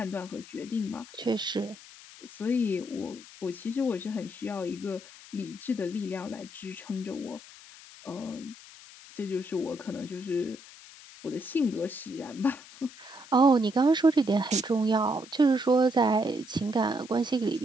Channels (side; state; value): left; noise; hiss, 19 dB below the sound